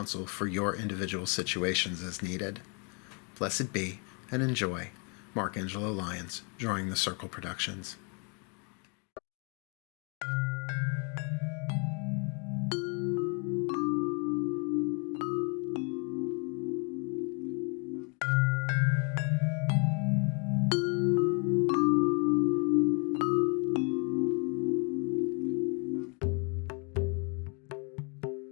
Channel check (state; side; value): quieter; right; 35.9 dB